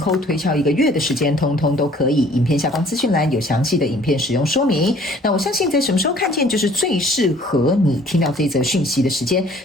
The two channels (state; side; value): normal; both; correlation 0.55